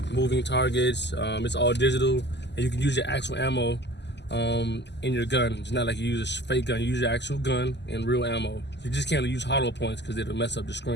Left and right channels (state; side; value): late; right; 0.50 ms